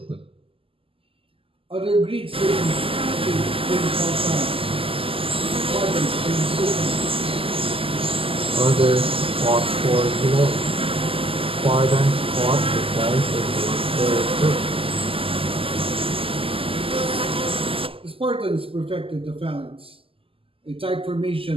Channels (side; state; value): left; late; 0.26 ms